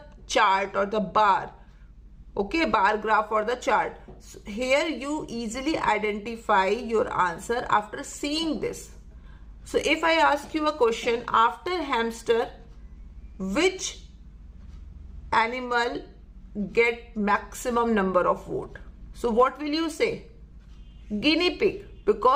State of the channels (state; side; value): identical; both; correlation 1.00